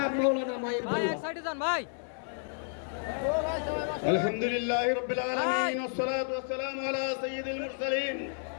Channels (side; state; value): right; silent; 57 dB below the other